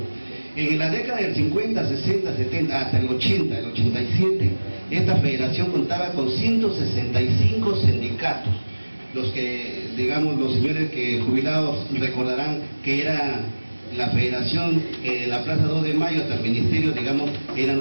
En la década del 50, 60, 70, hasta el 80, el 87, esta federación contaba con 165 sindicatos, los que, digamos, los señores que jubilados recordarán que era la federación, la Plaza 2 de Mayo hasta el ministerio, digamos, eran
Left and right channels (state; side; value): inverted; both; correlation -1.00